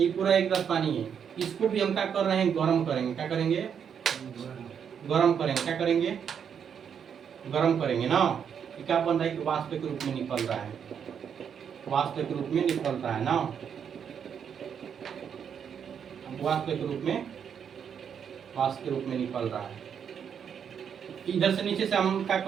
पूरा एक गिलास पानी है। इसको भी हम क्या कर रहे हैं, गर्म करेंगे। क्या करेंगे, गर्म करेंगे। क्या करेंगे, गर्म करेंगे ना। क्या बन रहा है कि वाष्प के रूप में निकल रहा है, वाष्प के रूप में निकल रहा है ना। वाष्प के रूप में, वाष्प के रूप में निकल रहा है। इधर से नीचे से हम क्या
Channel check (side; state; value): left; quieter; 7.7 dB